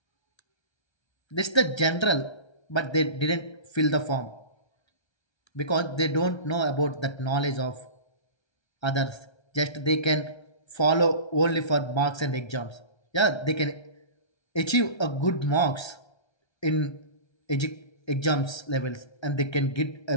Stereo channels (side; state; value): right; late; 1.3 ms